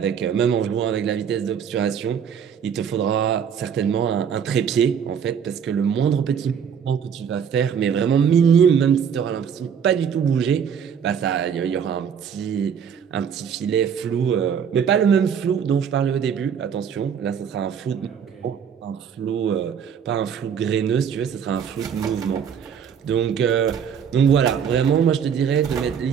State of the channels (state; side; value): quieter; left; 7.6 dB